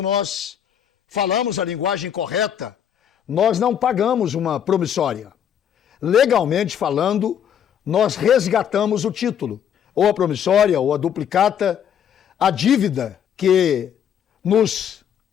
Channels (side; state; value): right; quieter; 9.0 dB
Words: nós falamos a linguagem correta, nós não pagamos uma promissória. Legalmente falando, nós resgatamos o título, ou a promissória, ou a duplicata, a dívida que nos